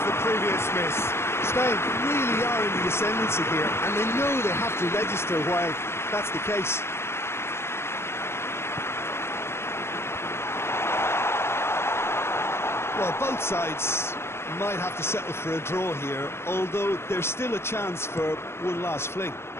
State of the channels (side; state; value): right; late; 0.12 ms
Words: the previous miss. Spain really are in the ascendancy here, and they know they have to register while that's the case. Well, both sides might have to settle for a draw here, although there's still a chance for one last fling.